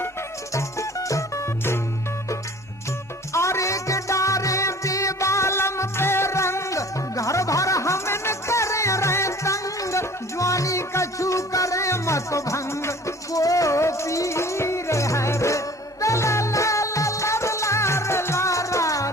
अरे के डारे बेबालम पे रंग घर भर हमन करे रहे तंग ज्वानी कछु करे मत भंग को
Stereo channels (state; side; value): normal; both; correlation 0.48